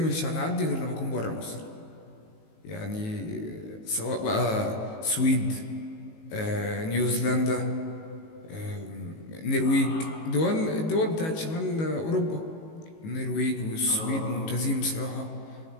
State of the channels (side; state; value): right; late; 19 ms